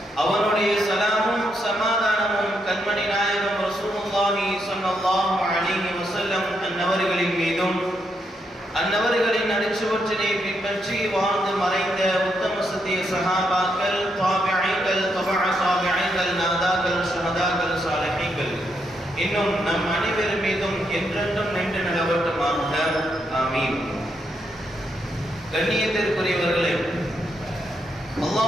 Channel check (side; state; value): both; normal; correlation 0.79